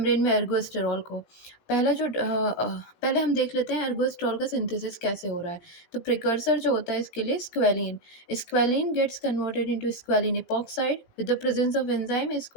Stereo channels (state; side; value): late; right; 18 ms